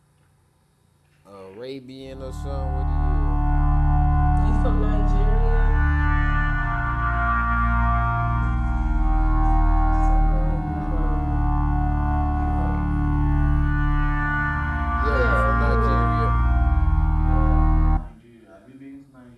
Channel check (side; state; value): both; identical; correlation 1.00